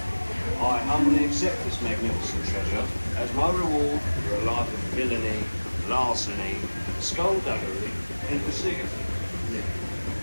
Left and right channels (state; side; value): inverted; both; correlation -1.00